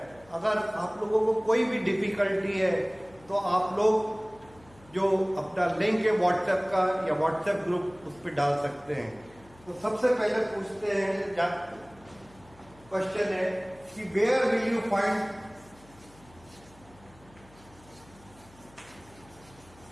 अगर आप लोगों को कोई भी डिफिकल्टी है तो आप लोग जो अपना लिंक है व्हाट्सएप का या व्हाट्सएप ग्रुप उस पर डाल सकते हैं। तो सबसे पहले पूछते हैं, क्वेश्चन है कि where will you find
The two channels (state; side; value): noise; left; hum, 26 dB below the sound